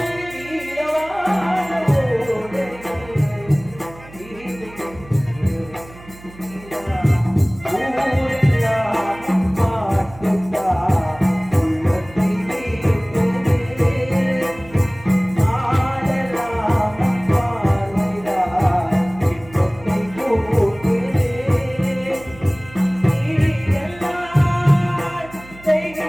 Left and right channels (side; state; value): right; noise; hum, 20 dB below the sound